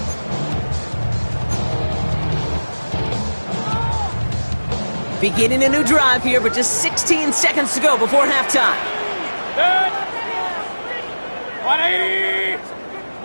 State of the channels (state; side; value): inverted; both; correlation -1.00